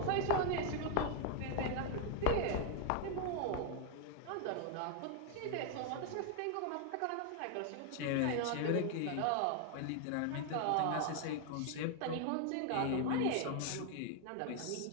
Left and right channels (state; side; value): different; both; correlation 0.00